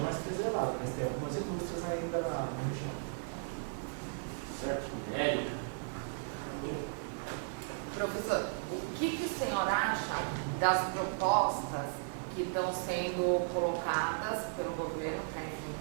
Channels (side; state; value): left; silent; 54 dB below the other